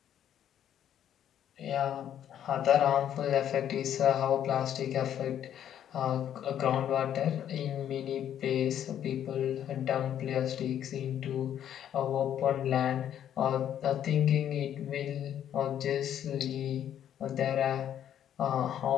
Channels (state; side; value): quieter; right; 10.2 dB